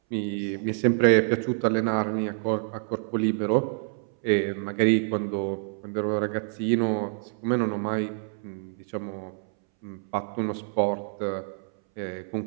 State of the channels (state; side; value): silent; left; 60 dB below the other